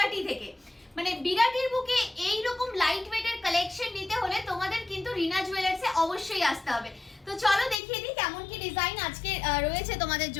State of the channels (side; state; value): right; drops out; at 7.8 s